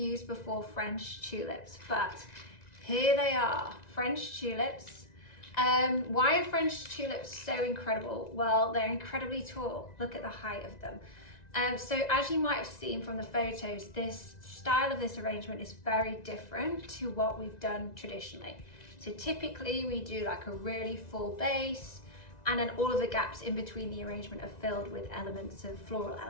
before, French tulips, but here they are, French tulips. Why are French tulips so incredible? Well, they're incredibly tall. Look at the height of them. So as you might have seen from the photos, this style of this arrangement is very different to what we've done traditionally. So typically we do like a really full base, and then all of the gaps in between the arrangement are filled with elements of floral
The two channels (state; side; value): late; right; 1.9 ms